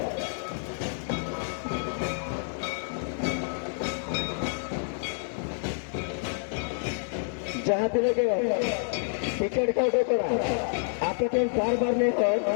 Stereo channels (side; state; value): right; silent; digital silence